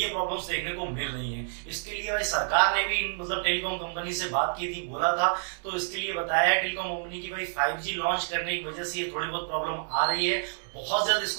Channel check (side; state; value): left; silent; digital silence